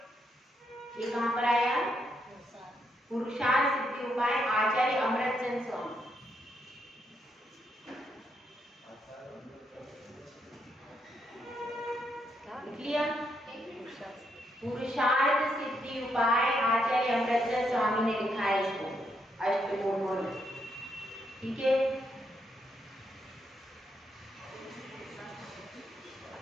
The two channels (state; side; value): normal; both; correlation 0.77